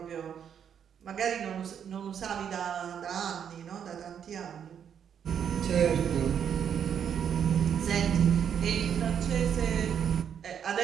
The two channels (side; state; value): left; quieter; 8.3 dB